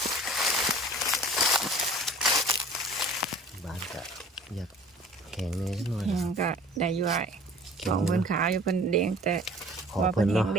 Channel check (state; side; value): normal; both; correlation 0.47